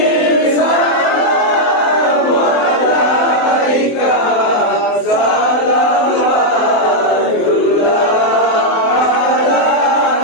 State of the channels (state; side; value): late; right; 24 ms